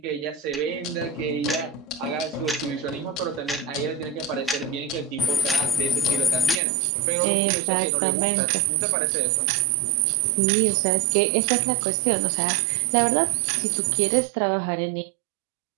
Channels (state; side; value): drops out; left; at 6.6 s